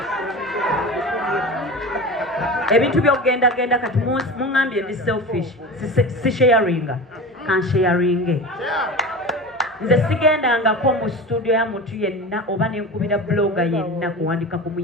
Ebintu byogenda kati mungambye ndi selfish, si sharinga, kan sharinge. Nze sigendangako mu studio ya muntu yenna oba nenkubira blogger yenna kuwandika ku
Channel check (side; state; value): both; normal; correlation 0.30